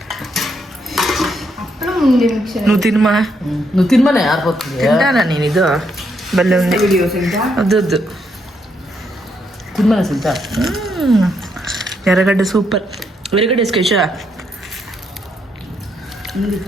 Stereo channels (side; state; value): both; normal; correlation 0.76